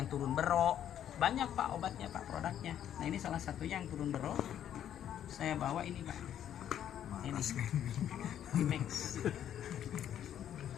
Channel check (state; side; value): quieter; right; 10.3 dB